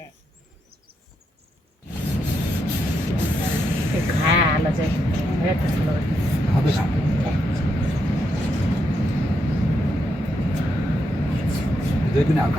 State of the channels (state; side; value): normal; both; correlation 0.81